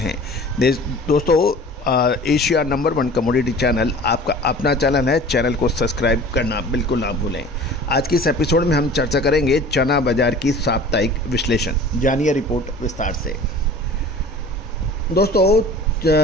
दोस्तों एशिया नंबर 1 कमोडिटी चैनल आपका अपना चैनल है। चैनल को सब्सक्राइब करना बिल्कुल ना भूलें। आज के इस एपिसोड में हम चर्चा करेंगे चना बाजार की साप्ताहिक विश्लेषण। जानिए रिपोर्ट विस्तार से। दोस्तों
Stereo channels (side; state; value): both; normal; correlation 0.43